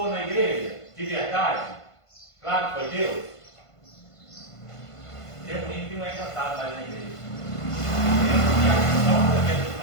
na igreja? De verdade? Claro que foi Deus. Tempo que não é cantado mais na igreja. E a questão da igreja do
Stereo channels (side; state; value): right; late; 1.5 ms